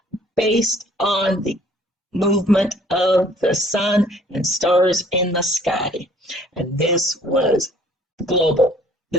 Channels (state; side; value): normal; both; correlation 0.57